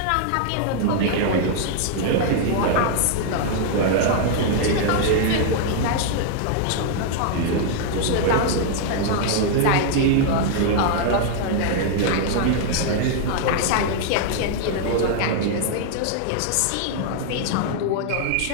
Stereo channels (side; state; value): both; different; correlation 0.00